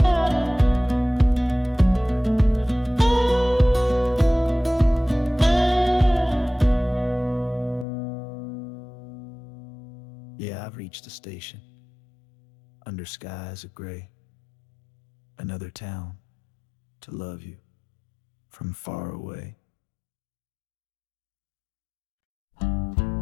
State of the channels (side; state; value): right; drops out; at 7.9 s